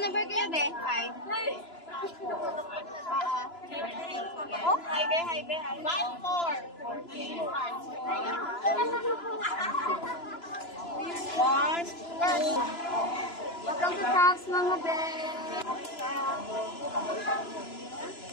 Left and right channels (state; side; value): late; right; 2.9 ms